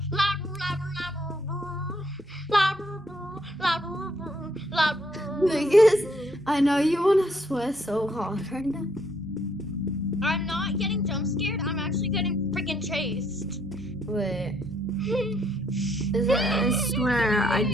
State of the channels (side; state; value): both; normal; correlation 0.70